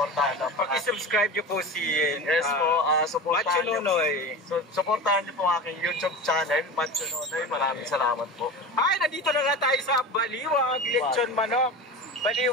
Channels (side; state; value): both; normal; correlation 0.30